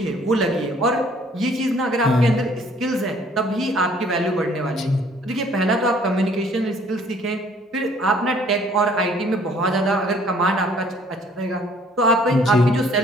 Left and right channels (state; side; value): normal; both; correlation 0.58